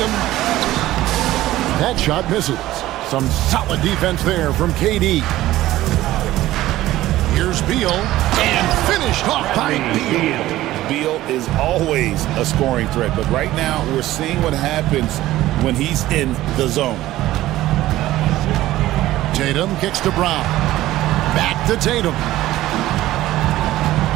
That shot misses. Some solid defense there from KD. Here's Beal, and finished off by Beal. Beal is always a scoring threat, but right now we're seeing what happens when he's in the zone. Tatum kicks to Brown. Back to Tatum.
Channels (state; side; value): quieter; left; 15.5 dB